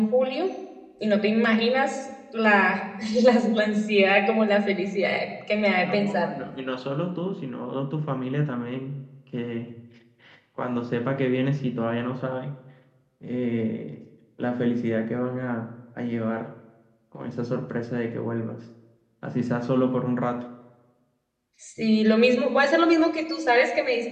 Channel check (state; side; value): identical; both; correlation 1.00